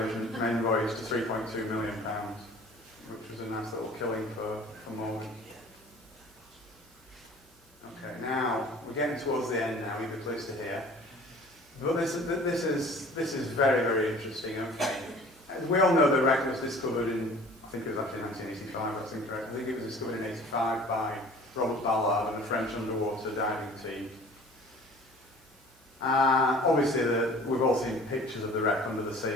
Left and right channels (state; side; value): normal; both; correlation 0.47